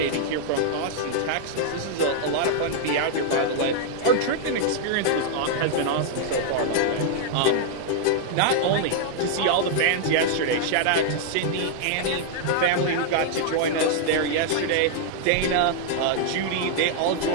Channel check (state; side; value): different; both; correlation -0.01